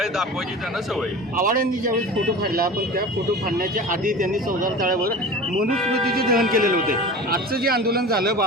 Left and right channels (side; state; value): both; normal; correlation 0.35